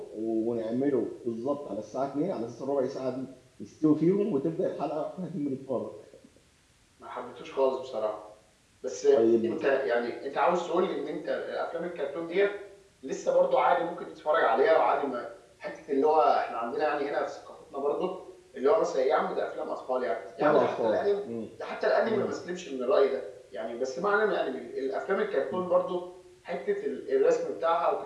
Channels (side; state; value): both; identical; correlation 1.00